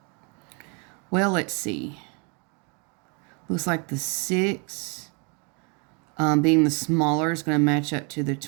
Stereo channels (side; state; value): left; quieter; 34.1 dB